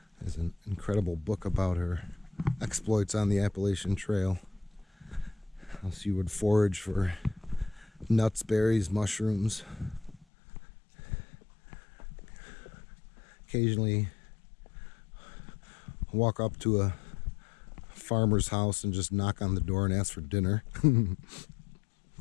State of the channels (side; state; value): right; drops out; at 10.2 s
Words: There's an incredible book about her exploits on the Appalachian Trail. How she would forage for nuts, berries, mushrooms. Occasionally walk up to a farmer's house and just knock on the door and ask for dinner. It's